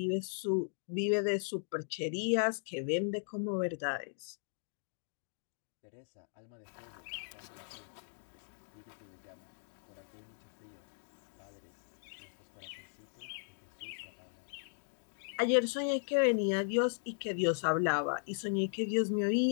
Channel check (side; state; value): right; silent; digital silence